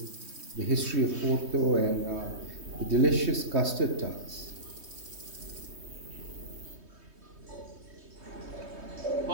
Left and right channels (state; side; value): late; left; 3.2 ms